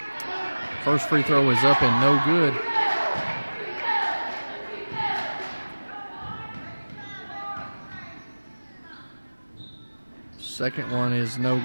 First free throw is up and no good. Second one is no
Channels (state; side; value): inverted; both; correlation -1.00